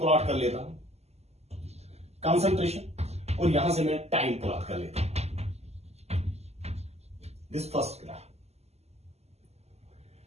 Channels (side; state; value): left; late; 0.30 ms